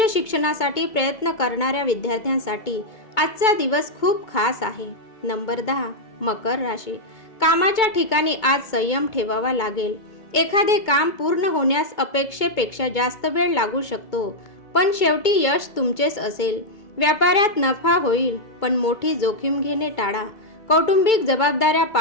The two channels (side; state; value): right; late; 2.2 ms